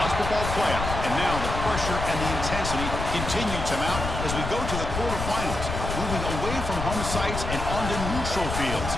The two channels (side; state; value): left; noise; rumble, 4 dB below the sound